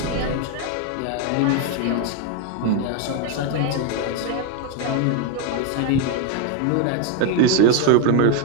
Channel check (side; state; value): both; different; correlation 0.01